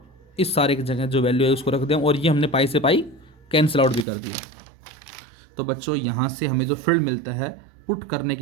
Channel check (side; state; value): left; drops out; at 4.0 s